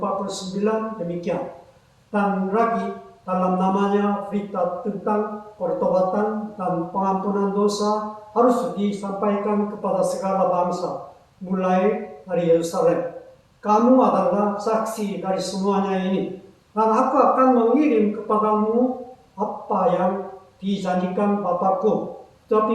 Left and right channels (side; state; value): both; identical; correlation 1.00